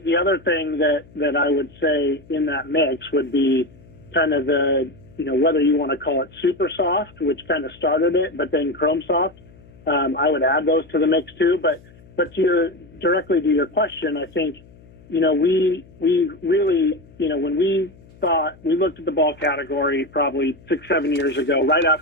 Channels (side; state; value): left; noise; hum, 24 dB below the sound